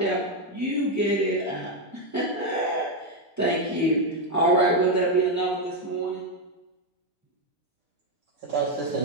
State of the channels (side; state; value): both; normal; correlation 0.04